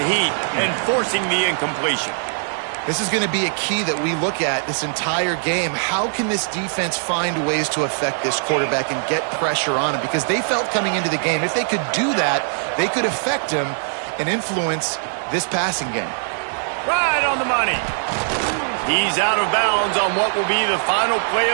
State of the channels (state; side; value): silent; left; digital silence